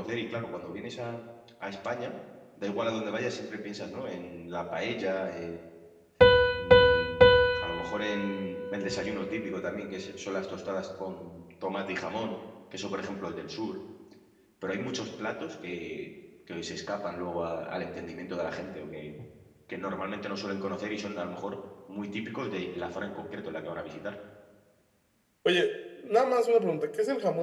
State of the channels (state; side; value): identical; both; correlation 1.00